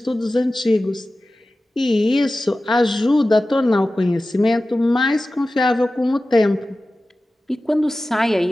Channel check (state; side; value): normal; both; correlation 0.96